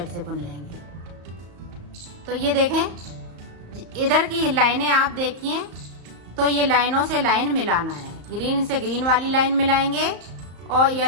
से बुन लेंगे। तो ये देखें इधर की लाइनें आप देखिए, तो ये लाइनों से लाइन मिलाना है। ग्रीन से ग्रीन वाली लाइन मिलाएंगे और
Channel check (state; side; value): late; left; 35 ms